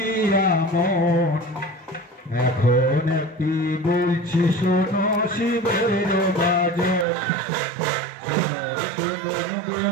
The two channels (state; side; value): drops out; left; at 7.1 s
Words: মন। এখন একটি বলছি শোনো শিবের বাজন। শুনুন